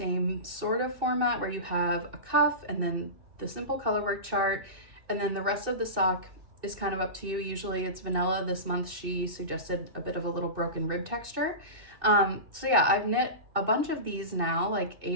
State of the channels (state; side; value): late; left; 2.6 ms